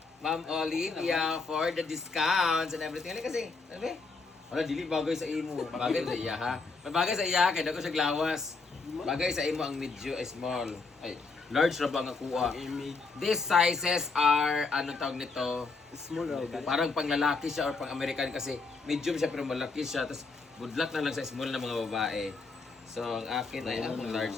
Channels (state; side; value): quieter; right; 4.2 dB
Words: Ma'am Olivia, for the discounts and everything. Ano kasi, ano ba? Wala, dili bagay sa imo. Bagay sa iya, ha? May bagay sa iya, kaya ko siya glawas. Bagay sa imo ang medium, small. Ay, large na ba ang kuha? These sizes are, ano tawag nito? Small raw. Parang pang lalaki siya or pang American kasi medium siya pero malaki siya. Tapos budlak na lang sa small na mga babae. So ang akin ay ang large